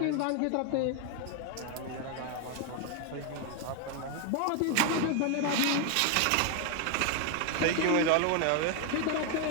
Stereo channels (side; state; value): both; different; correlation 0.01